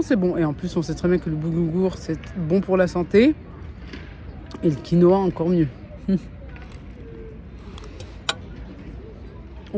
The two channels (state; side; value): identical; both; correlation 1.00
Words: c'est bon. Et en plus, on sait très bien que le boulgour, c'est bon pour la santé. Et le quinoa, encore mieux.